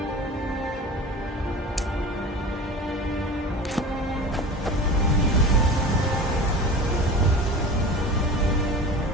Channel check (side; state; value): both; normal; correlation 0.35